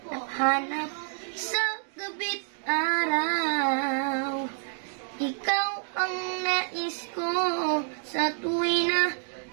sa gabi't araw. Ikaw ang nais ko sa tuwi na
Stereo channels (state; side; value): silent; left; 59 dB below the other